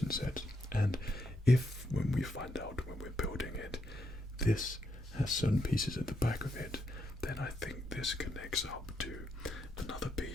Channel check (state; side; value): normal; both; correlation 0.79